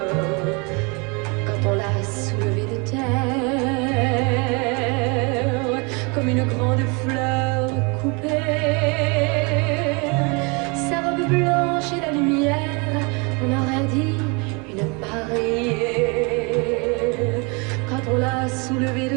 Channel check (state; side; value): quieter; left; 30.6 dB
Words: Quand on l'a soulevée de terre, comme une grande fleur coupée, sa robe blanche et la lumière, on aurait dit une mariée. Quand on l'a soulevée